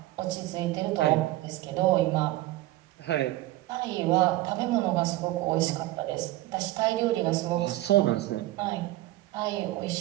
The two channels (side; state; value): left; quieter; 17.2 dB